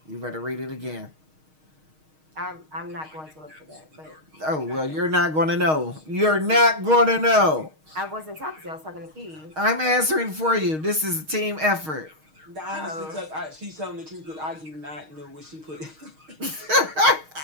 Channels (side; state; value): left; late; 6.4 ms